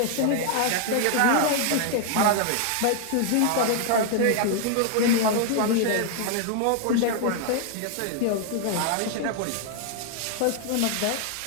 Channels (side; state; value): both; different; correlation 0.00